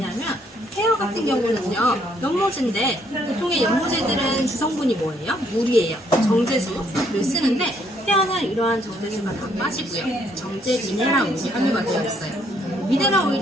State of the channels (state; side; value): normal; both; correlation 0.69